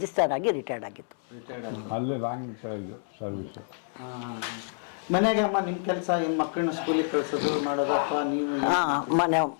ಆಗಿ ರಿಟೈರ್ಡ್ ಆಗಿತ್ತು. ಅಲ್ಲೇ ರಾಂಗ್ ಇದು ಸರ್ವಿಸು. ಮನೆಗೆ ಅಮ್ಮ ನಿಮ್ಮ ಕೆಲಸ ಏನು, ಮಕ್ಕಳನ್ನ ಸ್ಕೂಲಿಗೆ ಕಳಿಸೋದು ಮಾಡೋದು ಅಥವಾ ನೀವು?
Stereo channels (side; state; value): right; silent; 59 dB below the other